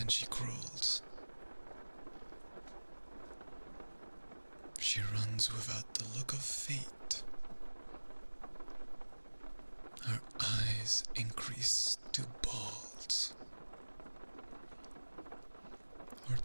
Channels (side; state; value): both; inverted; correlation -1.00